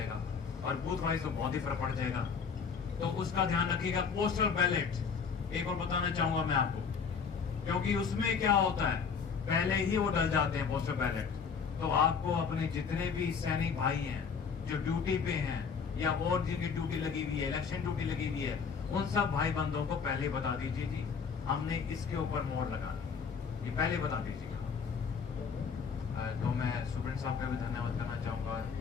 और बूथ वाइज तो बहुत ही फर्क पड़ जाएगा। तो उसका ध्यान रखिएगा। पोस्टल बैलेट एक और बताना चाहूंगा मैं आपको, क्योंकि उसमें क्या होता है, पहले ही वो डल जाते हैं पोस्टल बैलेट। तो आपको अपने जितने भी सैनिक भाई हैं जो ड्यूटी पे हैं या और जिनकी ड्यूटी लगी हुई है, इलेक्शन ड्यूटी लगी हुई है, उन सब भाई बंधुओं को पहले बता दीजिए जी हमने इसके ऊपर मोहर लगानी, ये पहले बता दीजिए। तो मैं सुप्रीम साहब का भी धन्यवाद करना चाहूंगा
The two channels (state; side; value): quieter; right; 6.0 dB